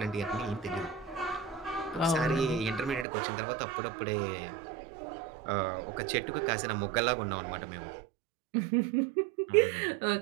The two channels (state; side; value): drops out; left; at 3.1 s